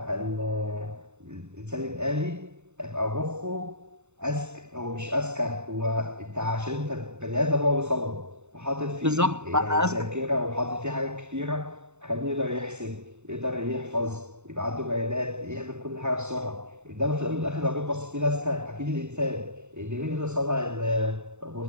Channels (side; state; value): left; late; 0.82 ms